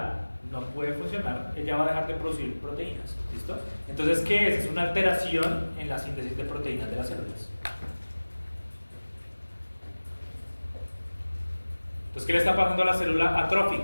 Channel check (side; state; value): both; inverted; correlation -1.00